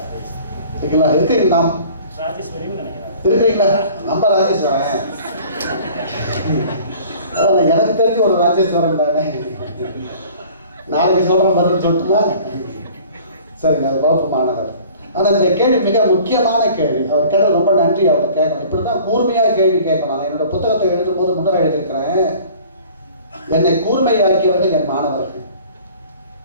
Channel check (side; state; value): both; inverted; correlation -0.48